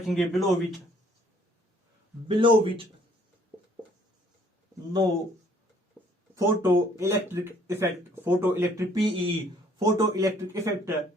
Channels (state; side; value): normal; both; correlation 0.61